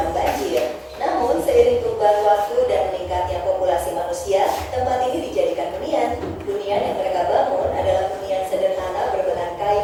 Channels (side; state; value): both; identical; correlation 1.00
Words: banjir. Namun seiring perubahan waktu dan meningkatnya populasi manusia, tempat ini dijadikan hunian. Hunian yang mereka bangun adalah hunian sederhana berbahan